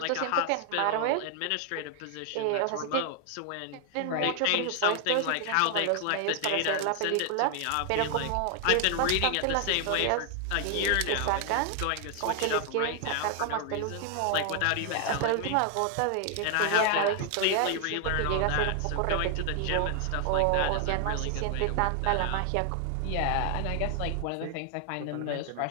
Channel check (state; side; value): different; both; correlation 0.00